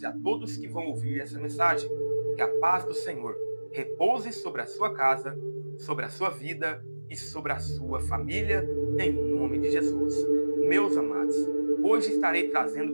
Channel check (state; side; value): inverted; both; correlation -1.00